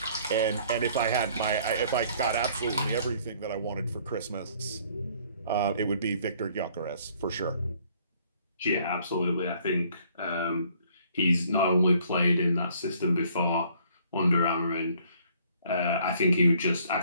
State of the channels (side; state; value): both; inverted; correlation -0.60